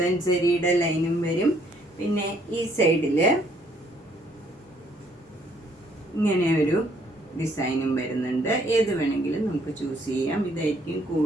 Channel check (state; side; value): normal; both; correlation 0.66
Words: ജെറിയുടെ ലൈനും വരും. പിന്നെ ഈ സൈഡിൽ ഇങ്ങനെ ഒരു ഡിസൈനും വരുന്നുണ്ട്. ഏത് വേണമെങ്കിലും നമുക്ക് ചൂസ് ചെയ്യാം. ഇതായിരിക്കും